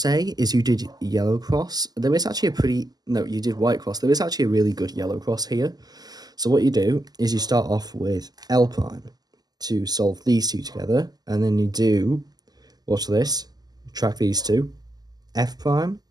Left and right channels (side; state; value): left; late; 0.19 ms